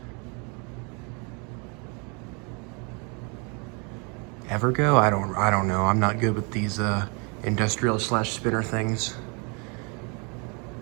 Evergo? I don't know. I'm not good with these industrial slash spinner things.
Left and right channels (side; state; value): left; quieter; 33.4 dB